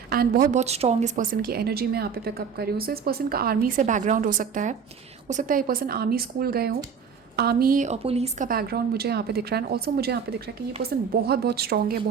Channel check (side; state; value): left; quieter; 6.6 dB